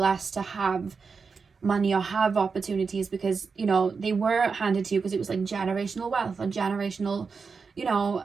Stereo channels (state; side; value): quieter; left; 5.1 dB